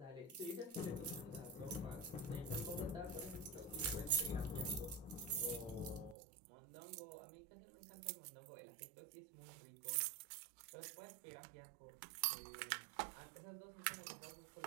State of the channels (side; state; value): left; drops out; at 6.2 s